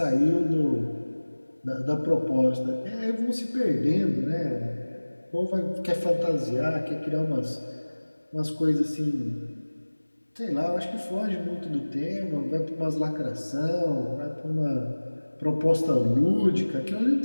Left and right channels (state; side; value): inverted; both; correlation -1.00